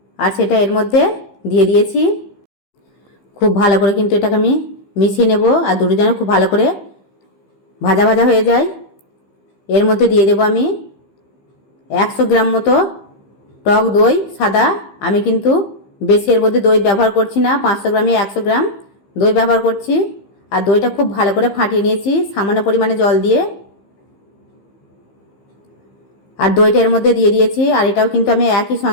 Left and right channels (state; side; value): late; right; 15 ms